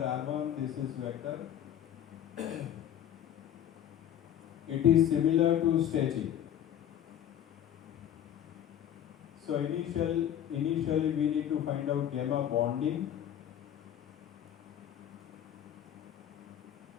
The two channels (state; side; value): quieter; right; 10.4 dB